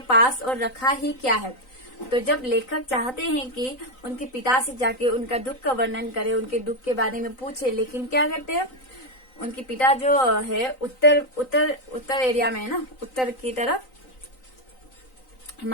पास और रखा ही क्या है। तो जब लेखक चाहते हैं कि उनके पिता से जाके उनका दुख का वर्णन करे, उनके दुख के बारे में पूछे, लेकिन क्या करते हैं उनके पिता जो है उत्तर एरिया में है ना, उत्तर की तरफ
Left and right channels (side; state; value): right; late; 3.9 ms